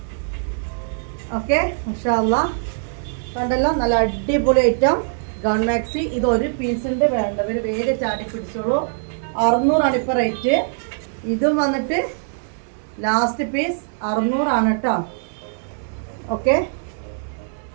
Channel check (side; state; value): left; silent; digital silence